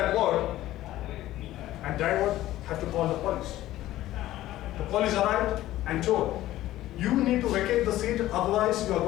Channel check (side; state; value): right; quieter; 14.9 dB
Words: word, and driver had to call the police. The police arrived and told, you need to vacate the seat, otherwise you are